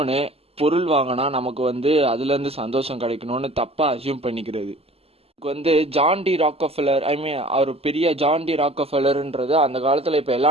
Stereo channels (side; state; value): left; late; 0.29 ms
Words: பொருள் வாங்கினா நமக்கு வந்து அதுலேருந்து சந்தோஷம் கிடைக்கணும்னு தப்பாக அசியூம் பண்ணிக்கிறது. வந்து ஜான் டி ராக்கஃபெல்லர், அவர் பெரிய ஜான் டி ராக்கஃபெல்லர்ன்றது அந்த காலத்தில் இப்போ